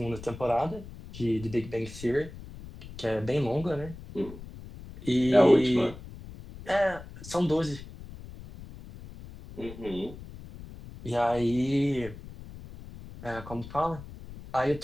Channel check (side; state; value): left; noise; rumble, 15 dB below the sound